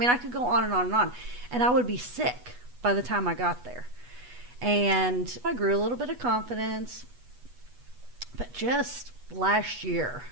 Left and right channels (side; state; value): left; late; 8.2 ms